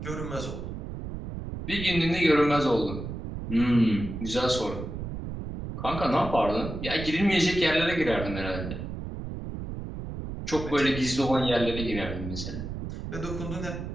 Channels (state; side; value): noise; right; rumble, 7 dB below the sound